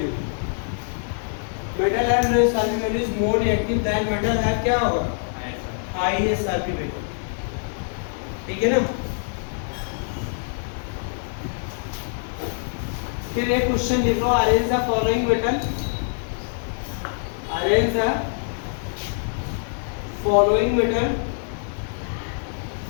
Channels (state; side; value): silent; right; digital silence